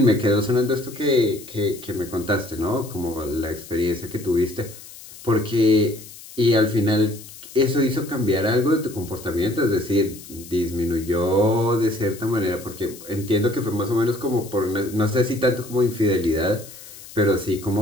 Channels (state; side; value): noise; left; hiss, 17 dB below the sound